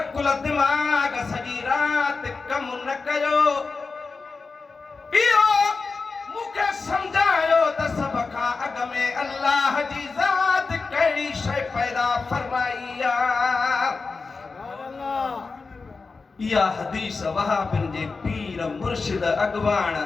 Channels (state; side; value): quieter; right; 4.3 dB